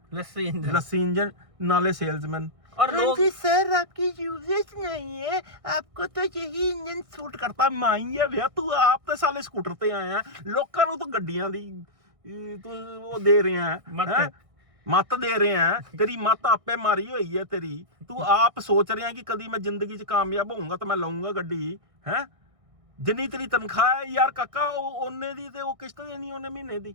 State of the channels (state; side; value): late; left; 1.6 ms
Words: लस्सी इंजन नाले सेल्समैन। और लोग सर आपकी यूजेज नहीं है, आपको तो यही इंजन सूट करता। माई है भैया तू, आप तो साले स्कूटर ते आया, लोकां नू तो गड्डियां दी तू वो दे रहे हैं, मत दे रहे हैं। तेरी मत आपे मारी हुई है तेरी। तू आप सोच रहे हैं कि कभी मैं जिंदगी च कामयाब होऊंगा तो मैं लाऊंगा गड्डी, है? जिन्नी तेरी तनख्वाह है यार काका, ओने दी ते वो किस्त देनी ओने महीने